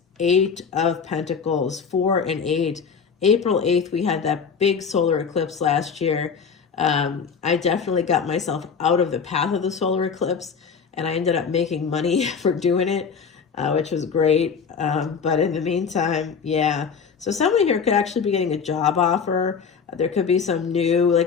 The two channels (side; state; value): right; quieter; 6.1 dB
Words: 8 of Pentacles, 4 and 8. April 8th, we had that big solar eclipse last year. I definitely got myself out of the path of the solar eclipse, and I ended up making money for doing it, which was great. But in the meantime, yeah. So someone here could actually be getting a job offer. There could be some new,